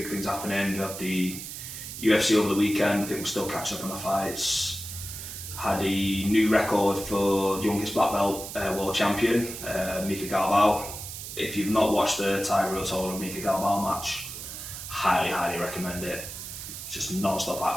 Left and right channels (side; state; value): right; noise; hiss, 9 dB below the sound